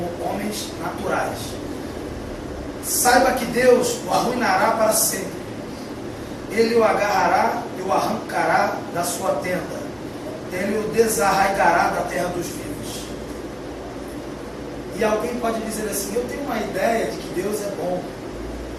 homens naturais: saiba que Deus o arruinará para sempre, ele o agarrará e o arrancará da sua tenda, ele o desarraigará da terra dos vivos. E alguém pode dizer assim: eu tenho uma ideia de que Deus é bom.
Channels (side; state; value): both; identical; correlation 1.00